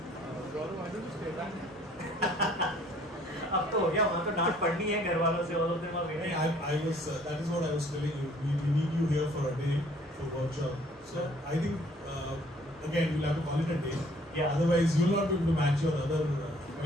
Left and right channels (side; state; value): both; normal; correlation 0.58